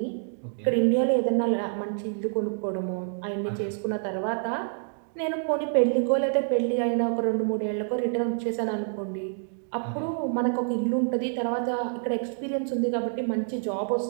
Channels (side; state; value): left; silent; digital silence